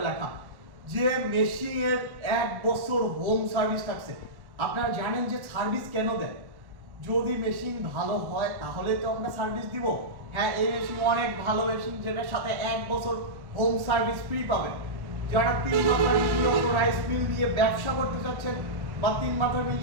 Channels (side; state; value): left; late; 1.1 ms